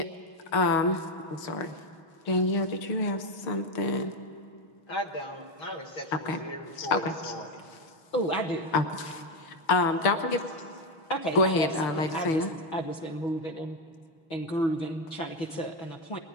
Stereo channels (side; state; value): right; late; 6.2 ms